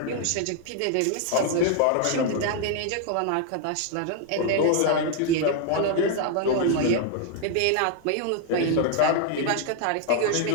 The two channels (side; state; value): both; different; correlation 0.00